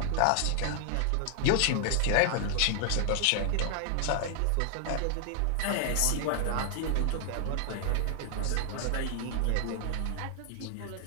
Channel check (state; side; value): different; both; correlation 0.00